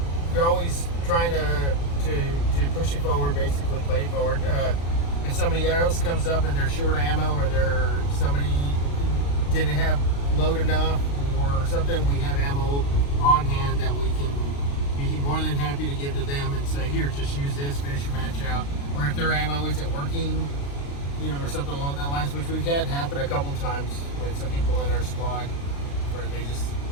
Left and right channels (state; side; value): late; right; 35 ms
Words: always trying to push it forward, basically play it forward. If somebody else comes up and they're short ammo, or somebody didn't have load enough or something, we have ammo on hand that we can be more than happy to give to them and say, here, just use this, finish your match out. Or if their ammo isn't working, or something along that lines, which we've had happen a couple times with some people in our squad where they just